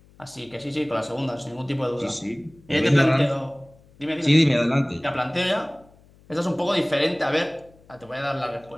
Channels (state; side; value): noise; left; hum, 28 dB below the sound